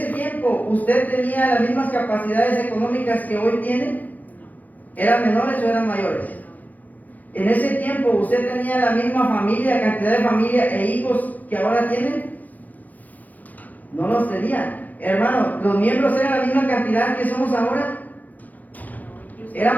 tiempo usted tenía las mismas capacidades económicas que hoy tiene? ¿Eran menores o eran mayores? En ese tiempo usted tenía la misma familia, cantidad de familia e hijos que ahora tiene. No los tenía. Hermano, los miembros eran la misma cantidad que somos ahora.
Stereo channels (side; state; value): right; late; 0.080 ms